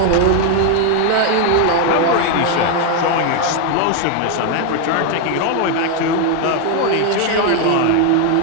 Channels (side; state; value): both; different; correlation 0.01